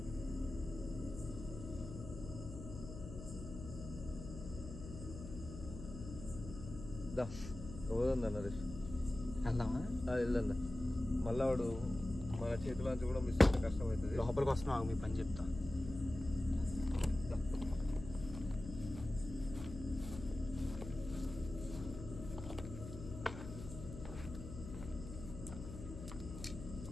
పోదా నరేష్, వెళ్దామా? వెళ్దా. మళ్ళా వాడు మన చేతిలోంచి కూడా మిస్ అయితే కష్టం అవుతుంది. లోపలికి వస్తున్నావు, మీ పని చెప్తా.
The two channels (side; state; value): left; noise; hum, 10 dB below the sound